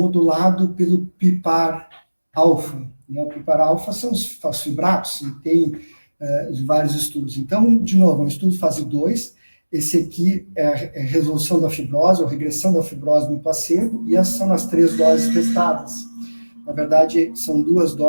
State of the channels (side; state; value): both; inverted; correlation -1.00